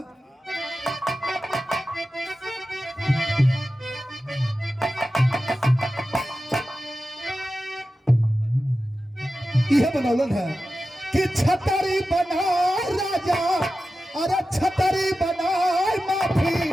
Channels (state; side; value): normal; both; correlation 0.93